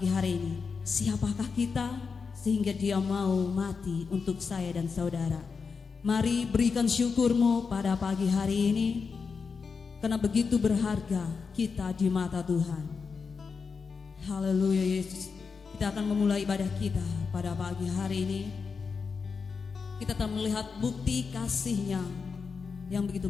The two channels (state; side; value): quieter; right; 5.3 dB